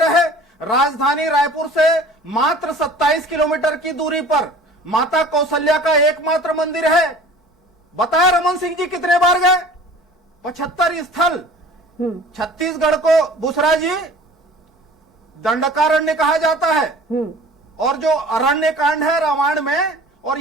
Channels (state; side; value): normal; both; correlation 0.45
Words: राजधानी रायपुर से मात्र 27 किलोमीटर की दूरी पर माता कौशल्या का एकमात्र मंदिर है। बताया रमन सिंह जी कितने बार गए? 75 स्थल। छत्तीसगढ़ को बुसरा जी दंडकारण्य कहा जाता है, और जो अरण्य कांड है रामायण में, और